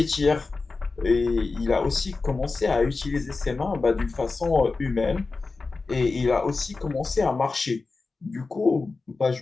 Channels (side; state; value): right; quieter; 3.9 dB